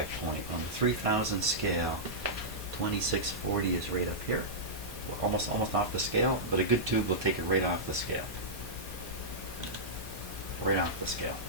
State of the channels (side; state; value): both; normal; correlation -0.12